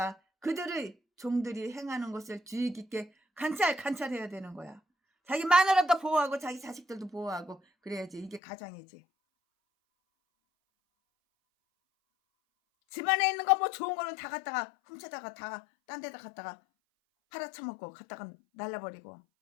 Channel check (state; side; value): drops out; right; at 8.4 s